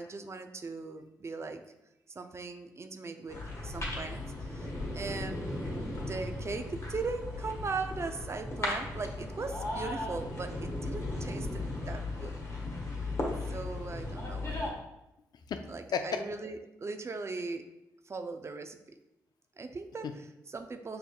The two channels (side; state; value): both; normal; correlation 0.70